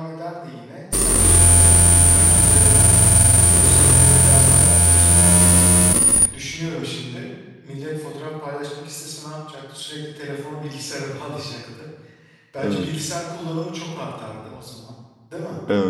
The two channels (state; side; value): identical; both; correlation 1.00